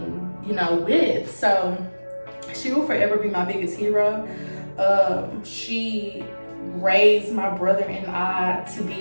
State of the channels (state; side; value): inverted; both; correlation -1.00